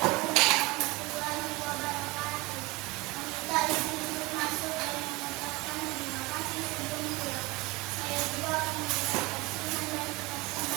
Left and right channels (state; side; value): quieter; left; 23.2 dB